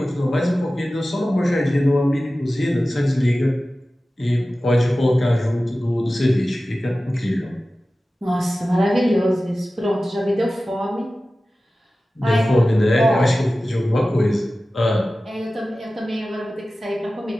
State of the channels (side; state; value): both; normal; correlation 0.96